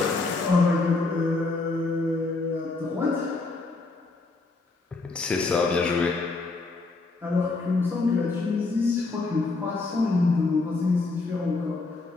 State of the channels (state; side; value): quieter; right; 3.6 dB